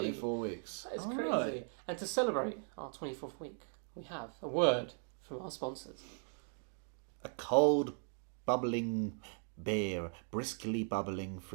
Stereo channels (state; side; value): silent; left; 52 dB below the other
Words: weeks. That is All crazy. right. And to celebrate our 24th week, we have a word from our sponsors. A cold, bubbling beer, briskly bubbling